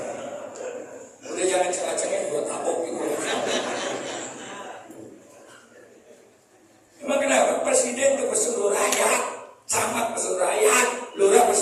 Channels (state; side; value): identical; both; correlation 1.00